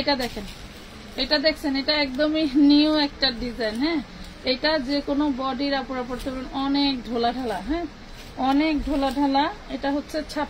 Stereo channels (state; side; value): identical; both; correlation 1.00